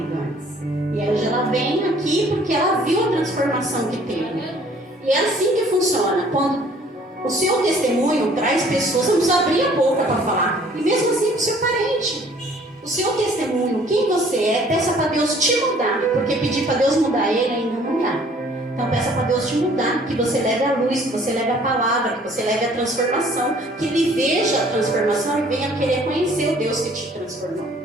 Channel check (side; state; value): both; normal; correlation 0.56